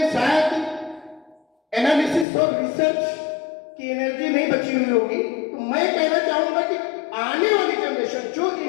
शायद एनालिसिस और रिसर्च की एनर्जी नहीं बची हुई होगी। तो मैं कहना चाहूंगा कि आने वाली जनरेशन, जो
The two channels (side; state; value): right; drops out; at 2.2 s